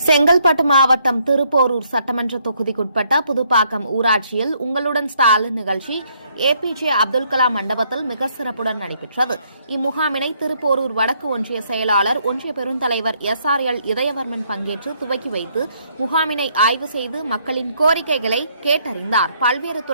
செங்கல்பட்டு மாவட்டம் திருப்போரூர் சட்டமன்ற தொகுதிக்குட்பட்ட புதுப்பாக்கம் ஊராட்சியில் உங்களுடன் ஸ்டாலின் நிகழ்ச்சி ஏபிஜே அப்துல் கலாம் மண்டபத்தில் மிக சிறப்புடன் நடைபெற்றது. இம்முகாமினை திருப்போரூர் வடக்கு ஒன்றிய செயலாளர், ஒன்றிய பெருந்தலைவர் SRL இதயவர்மன் பங்கேற்று துவக்கி வைத்து முகாமினை ஆய்வு செய்து மக்களின் கோரிக்கைகளை கேட்டறிந்தார். பல்வேறு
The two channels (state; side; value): inverted; both; correlation -0.70